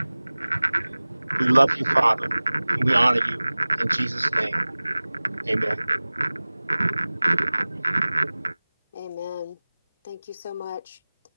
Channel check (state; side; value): inverted; both; correlation -0.99